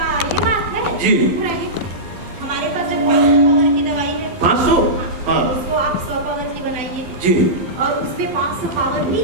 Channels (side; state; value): left; late; 12 ms